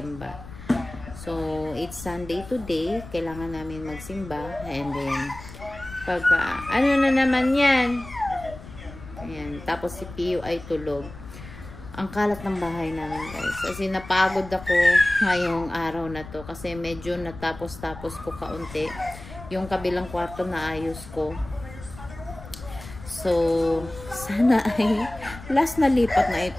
So, it's Sunday today. Kailangan namin magsimba. And then, pagka, na naman yan? Ayan. Tapos si Pio ay tulog. Ang kalat ng bahay namin, guys. Kasi napagod ako ngayong araw na to. Kasi medyo natapos-tapos ko kaunti. Yung kabilang kwarto na ayos ko. So, sana ay last na lipat na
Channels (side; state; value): left; noise; rumble, 15 dB below the sound